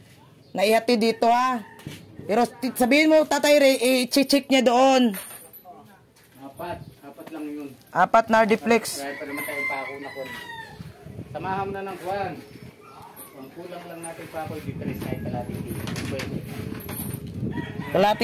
na ihati dito ha. Pero sabihin mo Tatay Re, i-check niya doon. Apat lang yun. Apat na hardiplex. Kaya pa naman tayo pako na kon. Samahan mo na ng kuwan. Ang kulang lang natin pako, di 3 kahit kalating kilo. Pwede.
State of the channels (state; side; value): identical; both; correlation 1.00